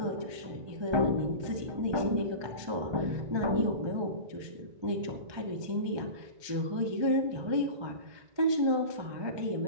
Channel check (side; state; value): left; late; 1.3 ms